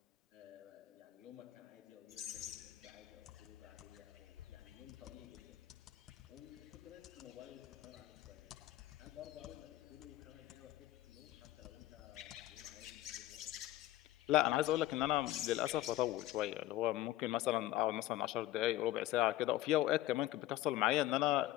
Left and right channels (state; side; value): quieter; right; 15.2 dB